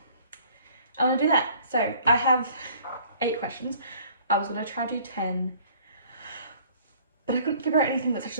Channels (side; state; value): both; inverted; correlation -0.55